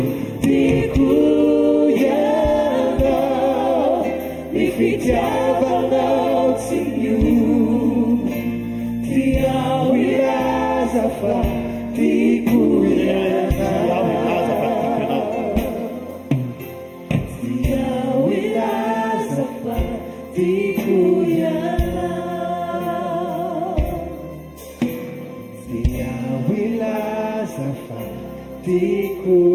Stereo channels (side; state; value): both; identical; correlation 1.00